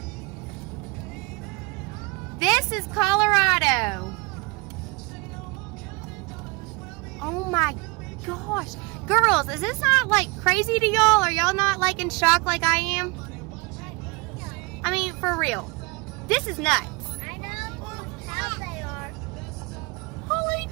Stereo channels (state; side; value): quieter; left; 26.4 dB